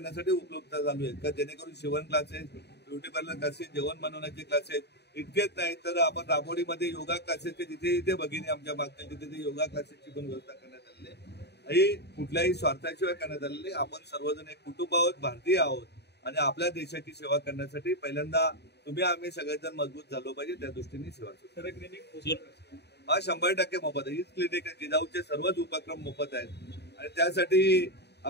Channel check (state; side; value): late; right; 0.49 ms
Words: उपलब्ध चालू आहेत का, जेणेकरून शिवण क्लासेस, ब्युटी पार्लर क्लासेस, जेवण बनवण्याचे क्लासेस. इतकेच नाही तर आपण राबोडीमध्ये योगा क्लासेसचे जिथे जिथे भगिनी आमच्या मागच्या तिथे योगा क्लासेसची पण व्यवस्था करण्यात आलेली आहे. ही कुठल्याही स्वार्थाशिवाय करण्यात आलेली. आपण सर्वजण एक कुटुंब आहोत, भारतीय आहोत आणि आपल्या देशाची सेवा करण्यासाठी पहिल्यांदा तुम्ही आम्ही सगळेजण मजबूत झालो पाहिजे, त्या दृष्टीने सेवा सुरू. हा 100% मोफत आहे. हीच क्लिनिक आहे. जिजाऊचे सर्वच उपक्रम मोफत आहेत आणि त्यासाठी